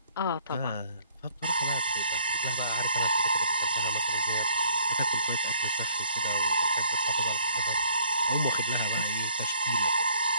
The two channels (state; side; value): inverted; both; correlation -0.61